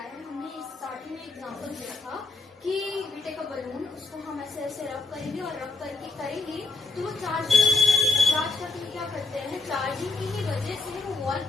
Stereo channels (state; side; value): quieter; right; 3.8 dB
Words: हमने स्टार्टिंग में एग्जांपल दिया था कि वी टेक अ बलून, उसको हम ऐसे ऐसे रब करेंगे और रब करके करेंगे तो वो चार्ज करके क्या करते हैं, चार्जिंग की ही वजह से वो वॉल